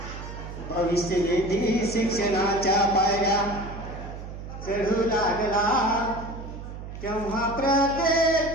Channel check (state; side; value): noise; right; hum, 10 dB below the sound